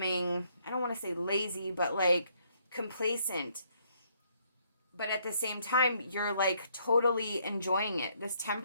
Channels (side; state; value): both; inverted; correlation -0.69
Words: I don't want to say lazy, but like complacent. But at the same time, you're like totally enjoying it. This